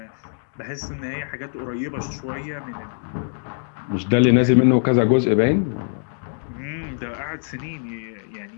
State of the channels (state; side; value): silent; right; digital silence